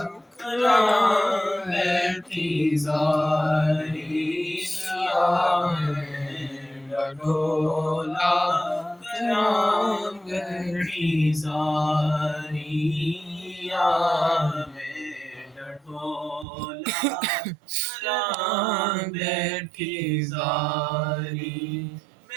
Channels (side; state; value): left; drops out; at 16.4 s